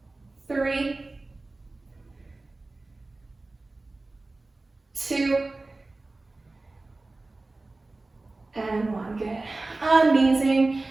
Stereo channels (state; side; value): quieter; left; 3.2 dB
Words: 3, 2, and 1. Good. Amazing.